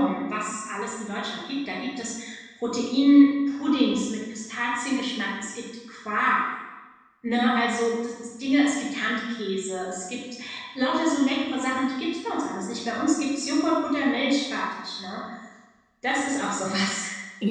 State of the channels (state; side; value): identical; both; correlation 1.00